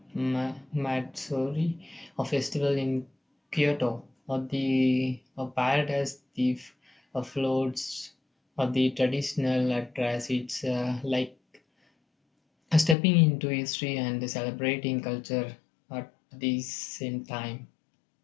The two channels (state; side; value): drops out; right; at 13.0 s